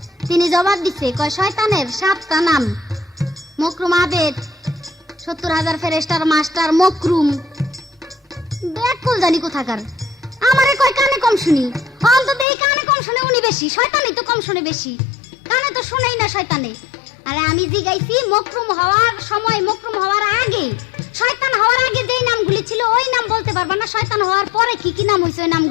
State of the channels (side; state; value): right; drops out; at 12.5 s